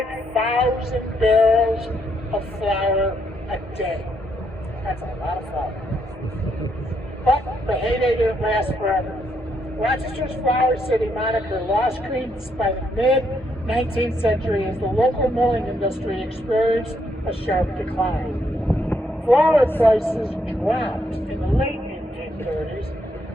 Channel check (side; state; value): both; normal; correlation 0.75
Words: barrels of flour a day. That's a lot of flour. But the heyday didn't last forever. Rochester's Flour City moniker lost credence by the mid-19th century as the local milling industry experienced a sharp decline. Flour prices dropped in the late 1830s,